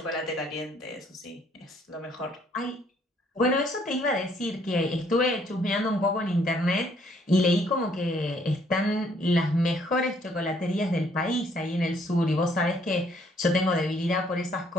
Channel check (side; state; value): both; normal; correlation 0.66